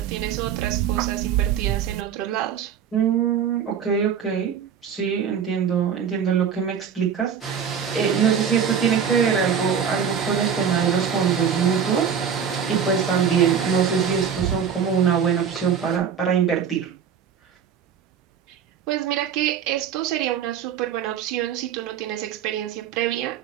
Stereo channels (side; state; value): left; quieter; 7.6 dB